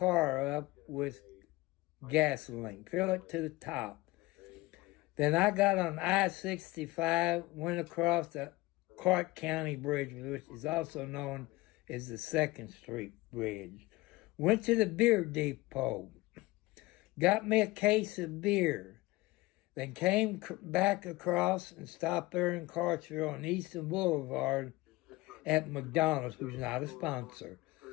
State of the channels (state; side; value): quieter; right; 20.7 dB